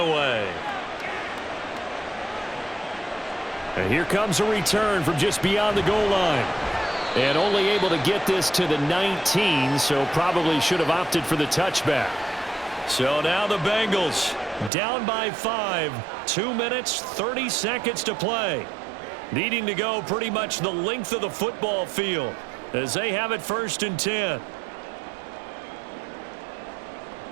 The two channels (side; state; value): left; drops out; at 14.7 s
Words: And here comes a return from just beyond the goal line. And only able to get this to the 19, so probably should have opted for the touchback. So now the Bengals down by 5, 2 minutes, 30 seconds to play. Needing to go pretty much the length of the football field as they have it 1st and 10.